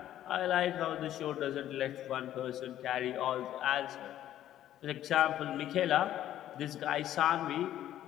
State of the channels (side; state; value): right; quieter; 12.2 dB